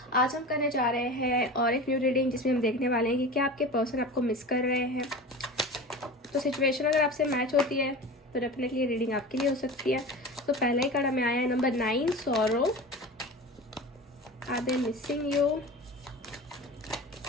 आज हम करने जा रहे हैं और एक न्यू रीडिंग जिसमें हम देखने वाले हैं कि क्या आपके पर्सन आपको मिस कर रहे हैं। तो सिचुएशन अगर आपसे मैच होती है तो डेफिनेटली रीडिंग आपके लिए हो सकती है। तो पहला ही कार्ड हमें आया है number 9, sorrow. Are they missing you?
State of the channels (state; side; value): normal; both; correlation 0.32